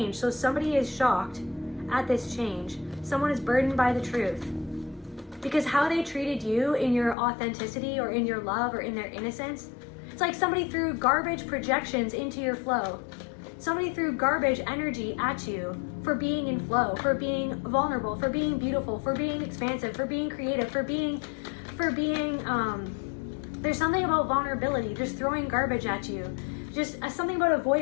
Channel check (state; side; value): drops out; right; at 7.2 s